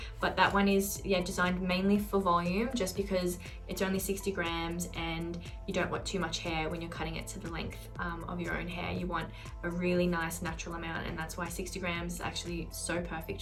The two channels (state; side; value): identical; both; correlation 1.00